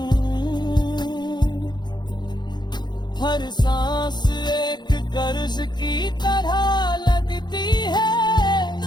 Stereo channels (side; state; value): right; late; 0.21 ms